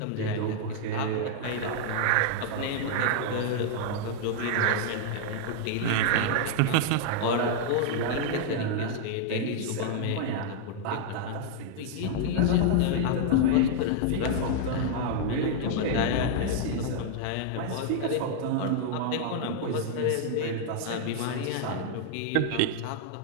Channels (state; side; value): different; both; correlation -0.01